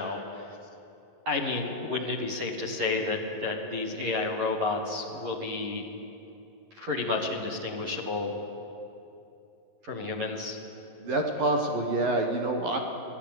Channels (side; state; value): left; late; 11 ms